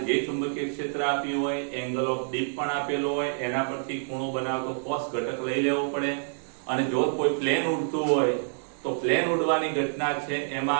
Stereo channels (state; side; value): silent; left; digital silence